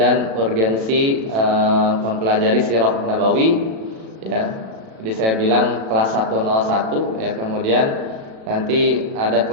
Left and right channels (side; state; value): left; late; 36 ms